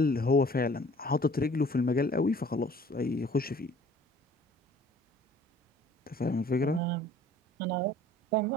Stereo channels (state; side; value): normal; both; correlation 0.52